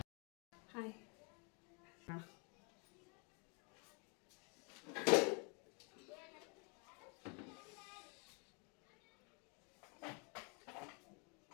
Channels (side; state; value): right; quieter; 34.7 dB